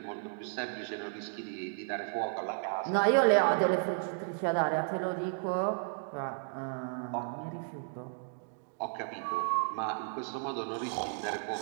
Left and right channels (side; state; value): left; silent; digital silence